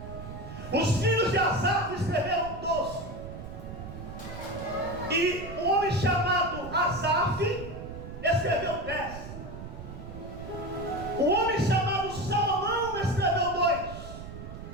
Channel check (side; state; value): right; noise; rumble, 11 dB below the sound